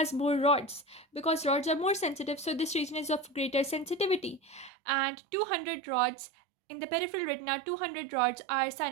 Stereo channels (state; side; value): drops out; left; at 4.7 s